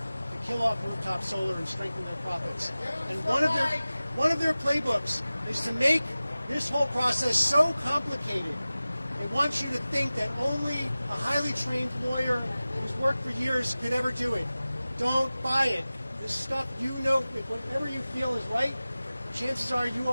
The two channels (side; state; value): both; inverted; correlation -0.97